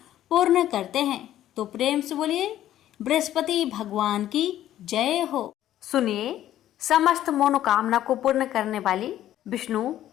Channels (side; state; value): right; quieter; 12.5 dB